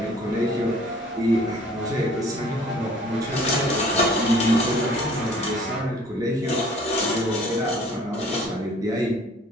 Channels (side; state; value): both; normal; correlation 0.53